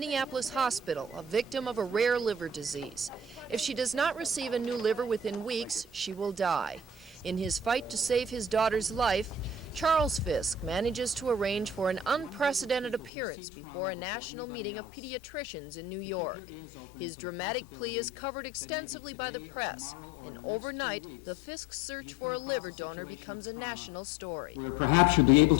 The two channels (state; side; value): drops out; right; at 13.1 s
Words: hospital, a victim of a rare liver disease. If she does not receive a new liver within weeks, she will die. In his fight to save his daughter's life, Charles Fisk manages to arrange for an unprecedented appearance before a national meeting of pediatricians in New York. His dramatic plea is covered extensively by the press, and overnight, the Fisk search for a liver donor becomes a national story. Perhaps you'll be able